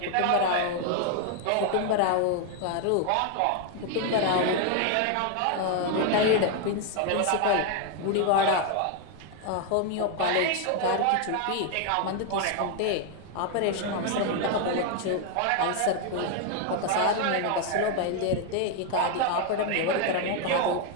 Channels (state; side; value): different; both; correlation 0.01